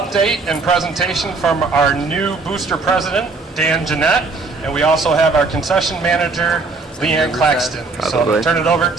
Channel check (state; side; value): quieter; left; 3.9 dB